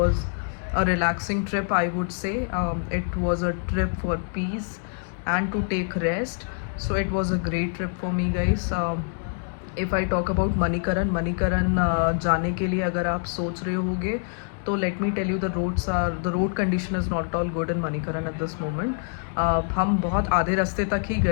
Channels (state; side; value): silent; right; 61 dB below the other